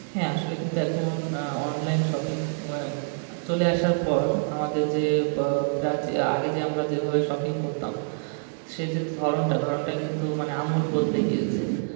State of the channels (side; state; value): left; silent; 61 dB below the other